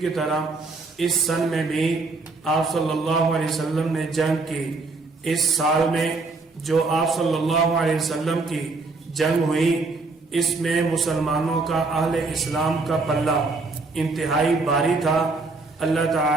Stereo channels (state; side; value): quieter; left; 3.7 dB